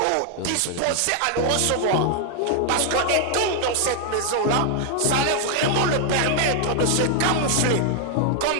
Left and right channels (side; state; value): both; different; correlation 0.00